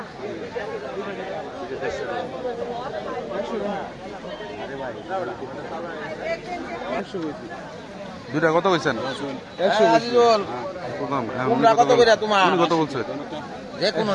দুইটা কত কইছেন? 100 কত করে তোমার কত বলছে? যে কোন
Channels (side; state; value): both; identical; correlation 1.00